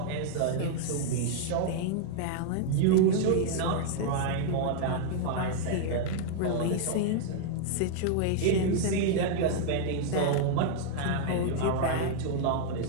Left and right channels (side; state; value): both; different; correlation -0.01